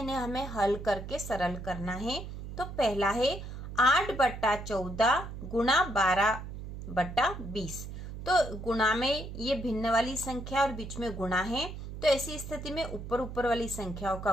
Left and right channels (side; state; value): right; noise; hum, 9 dB below the sound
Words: हमें हल करके सरल करना है। तो पहला है 8/14 गुणा 12/20। तो गुणा में ये भिन्न वाली संख्या और बीच में गुणा है, तो ऐसी स्थिति में ऊपर ऊपर वाली संख्याओं